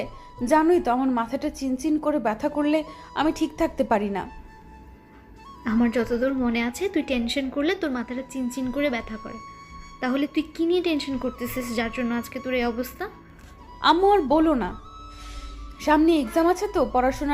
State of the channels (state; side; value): identical; both; correlation 1.00